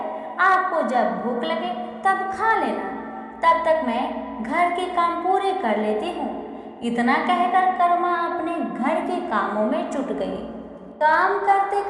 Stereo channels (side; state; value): both; identical; correlation 1.00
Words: आपको जब भूख लगे तब खा लेना, तब तक मैं घर के काम पूरे कर लेती हूँ। इतना कहकर कर्मा अपने घर के कामों में जुट गई। काम करते